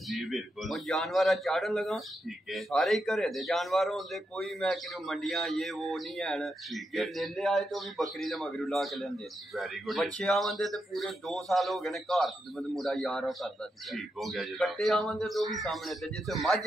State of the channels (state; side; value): normal; both; correlation 0.85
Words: जी बिल्कुल और जानवर चाड़न लगा ठीक है सारे ही घरे दे जानवर होंदे, कोई मैं कि मंडियां ये वो नहीं है। ठीक जे है लेले आए तो भी बकरी दे मगरू ला के लेंदे। वेरी गुड बच्चे आवंदे ते पूरे 2 साल हो गए ने घर खिदमत मुंडा यार करदा सी। ठीक हो गया जनाब। कट्टे आवंदे तो भी सामने ते जिथे मझ